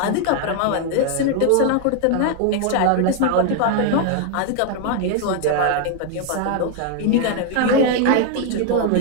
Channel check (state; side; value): different; both; correlation 0.01